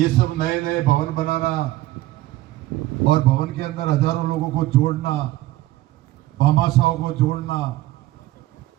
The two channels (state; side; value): quieter; left; 16.5 dB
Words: सब नए नए भवन बनाना और भवन के अंदर हजारों लोगों को जोड़ना, भामाशाहों को जोड़ना,